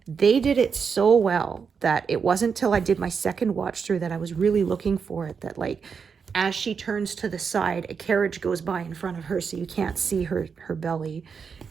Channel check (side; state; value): left; quieter; 6.0 dB